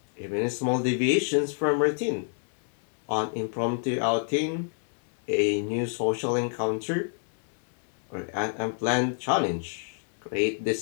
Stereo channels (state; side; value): silent; right; digital silence